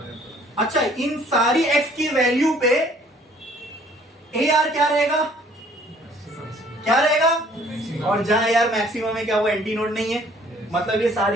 अच्छा, इन सारी x की वैल्यू पे ए आर क्या रहेगा, और जहां यार मैक्सिमम है क्या वो एंटी नोड नहीं है, मतलब ये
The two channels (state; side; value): normal; both; correlation 0.58